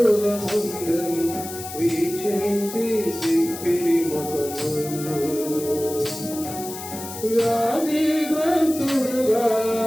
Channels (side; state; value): left; noise; hiss, 11 dB below the sound